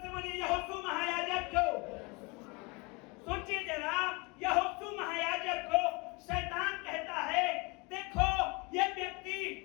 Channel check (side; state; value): right; quieter; 28.1 dB